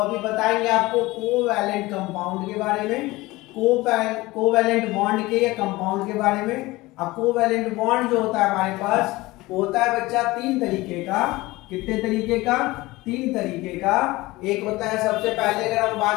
बताएंगे आपको कोवैलेंट कंपाउंड के बारे में, कोवैलेंट बॉन्ड के या कंपाउंड के बारे में। अब कोवैलेंट बॉन्ड जो होता है हमारे पास होता है बच्चा 3 तरीके का। कितने तरीके का? 3 तरीके का। एक होता है सबसे पहले अगर हम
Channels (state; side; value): quieter; right; 20.2 dB